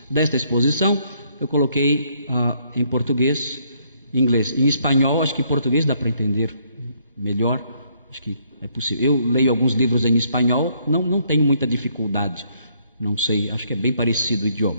desta exposição, eu coloquei em português, em inglês, em espanhol. Acho que em português dá para entender melhor, acho que é possível. Eu leio alguns livros em espanhol, não tenho muita dificuldade, não sei, acho que é bem parecido o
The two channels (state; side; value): inverted; both; correlation -0.69